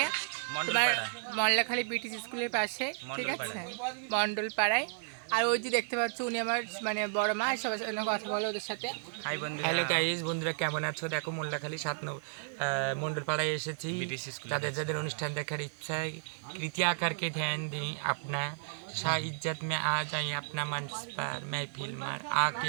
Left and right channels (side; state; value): left; silent; 56 dB below the other